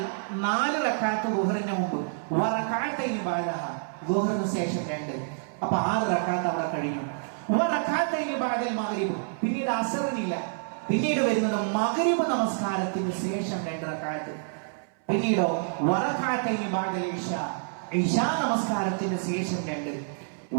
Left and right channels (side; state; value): left; silent; 60 dB below the other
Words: 4 റകഅത്ത് ദുഹറിന് മുമ്പ്, വറകഅത്തൈനി ബഅദഹ, ദുഹറിന് ശേഷം 2, അപ്പൊ 6 റകഅത്ത് അവിടെ കഴിഞ്ഞു. വറകഅത്തൈനി ബഅദൽ മഗ്രിബ്, പിന്നീട് അസറിനില്ല, പിന്നീട് വരുന്നത് മഗ്രിബ് നമസ്കാരത്തിന് ശേഷം 2 റകഅത്ത്, പിന്നീടോ വറകഅത്തൈനി ബഅദൽ ഇശാ, ഇശാ നമസ്കാരത്തിന് ശേഷം 2,